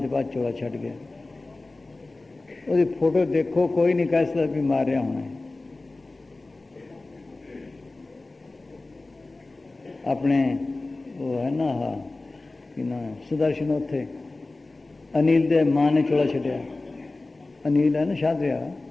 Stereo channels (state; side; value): quieter; right; 3.2 dB